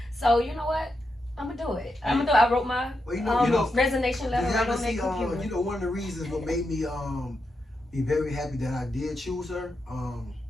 So, you know what? I'm going to do it. I wrote my Well, you know, resignation letter you right ever on that see, computer. you know, one of the reasons what made me be very happy that I did choose her.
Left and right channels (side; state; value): both; normal; correlation 0.85